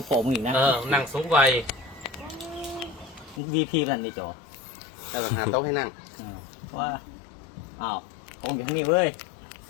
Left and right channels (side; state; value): right; drops out; at 3.4 s